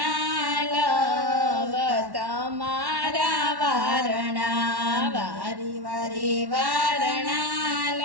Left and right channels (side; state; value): left; late; 1.1 ms